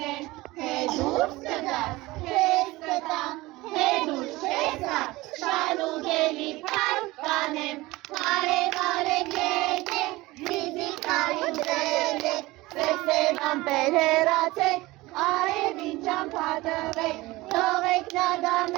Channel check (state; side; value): quieter; left; 20.2 dB